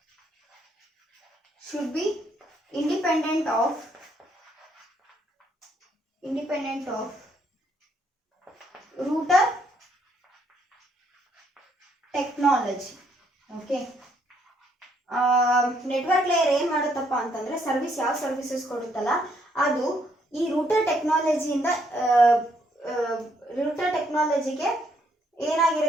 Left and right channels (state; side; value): normal; both; correlation 0.71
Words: router technology. Okay, network layer ಏನು ಮಾಡುತ್ತಪ್ಪ ಅಂತಂದರೆ ಸರ್ವಿಸ್ ಯಾವ ಸರ್ವಿಸಸ್ ಕೊಡುತ್ತಲ್ಲ ಅದು ಈ ರೂಟರ್ ಟೆಕ್ನಾಲಜಿಗೆ